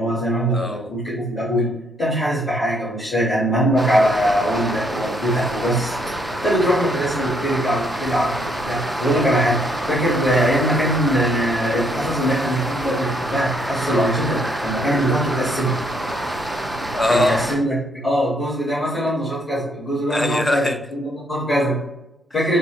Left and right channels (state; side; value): normal; both; correlation 0.70